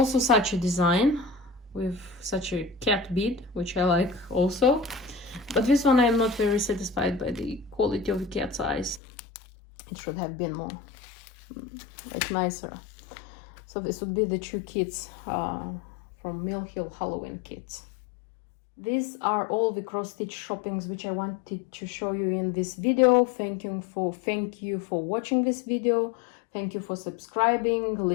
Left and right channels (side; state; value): right; drops out; at 9.0 s